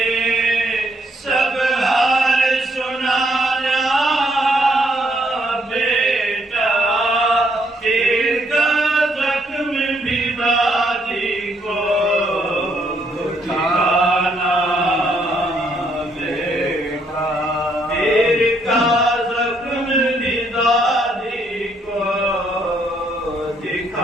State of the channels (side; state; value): both; normal; correlation 0.72